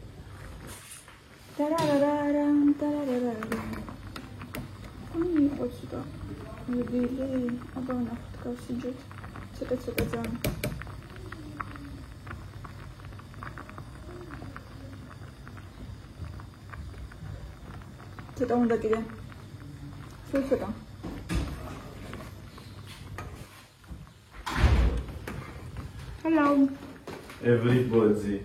Отсюда. Выбили. Обана такая сидит. Цыка-цыка зам. Что там такие? Что там? Hello. Everybody.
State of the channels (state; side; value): identical; both; correlation 1.00